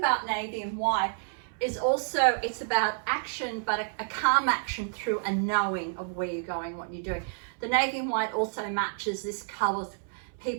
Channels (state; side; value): silent; left; 58 dB below the other